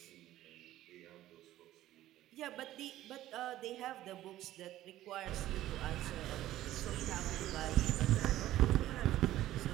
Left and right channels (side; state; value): left; quieter; 14.3 dB